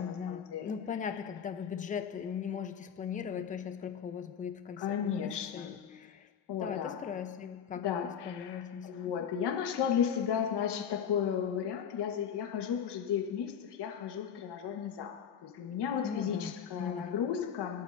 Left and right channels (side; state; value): right; quieter; 7.9 dB